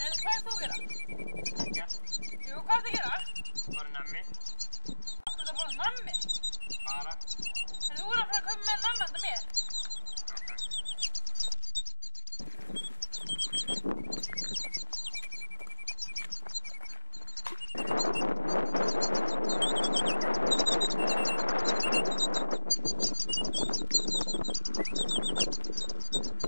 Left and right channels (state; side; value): inverted; both; correlation -1.00